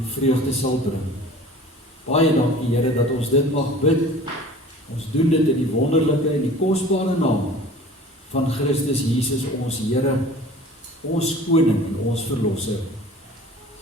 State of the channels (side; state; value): both; normal; correlation 0.44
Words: vreugde sal bring. Baie dankie, Here, dat ons dit mag bid. Ons doen dit in die wonderlike en die kosbare naam van Christus Jesus, ons Here, ons Koning en ons Verlosser.